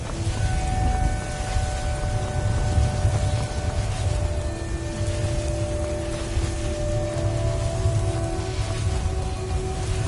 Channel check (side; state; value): both; identical; correlation 1.00